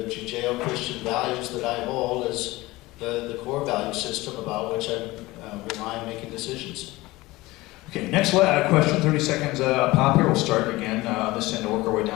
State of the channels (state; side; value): quieter; right; 19.9 dB